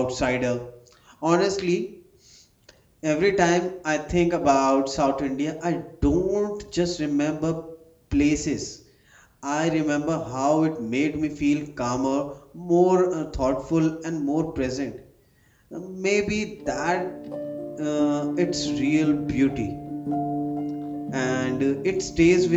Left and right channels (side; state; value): both; identical; correlation 1.00